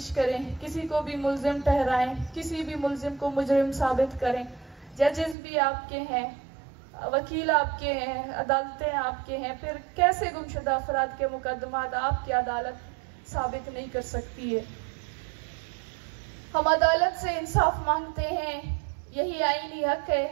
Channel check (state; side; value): drops out; left; at 5.4 s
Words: करें, किसी को भी मुल्जिम ठहराएं, किसी भी मुल्जिम को मुजरिम साबित करें, जजेस भी आपके हैं, वकील आपके हैं, अदालतें आपके हैं, फिर कैसे गुमशुदा अफराद के मुकदमात आपकी अदालत साबित नहीं कर सकती है। हम अदालत से इंसाफ मांगते हैं, यही आईनी हक